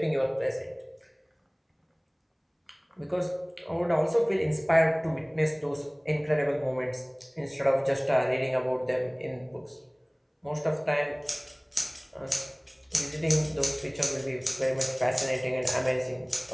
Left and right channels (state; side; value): identical; both; correlation 1.00